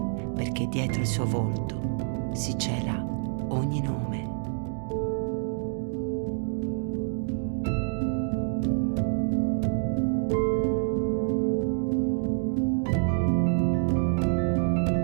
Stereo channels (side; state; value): left; silent; digital silence